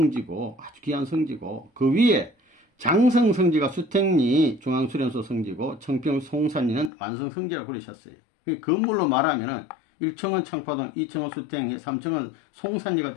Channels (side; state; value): right; drops out; at 6.9 s